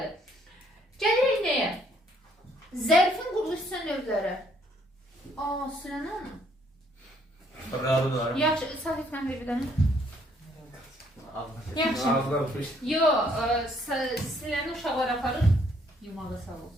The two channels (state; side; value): normal; both; correlation 0.66